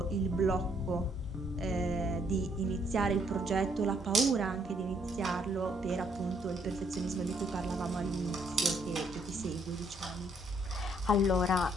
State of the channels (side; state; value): both; normal; correlation 0.69